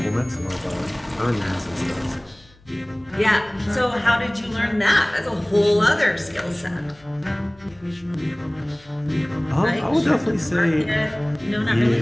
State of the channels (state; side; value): noise; left; hum, 28 dB below the sound